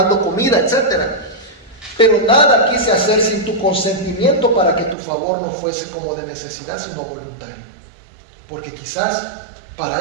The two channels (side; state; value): left; drops out; at 5.0 s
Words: comida, etcétera. Pero nada quise hacer sin tu consentimiento, para que tu favor no fuese como de necesidad, sino voluntario. Porque quizás